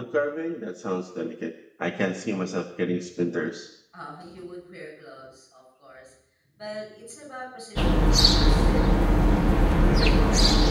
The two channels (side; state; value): both; identical; correlation 1.00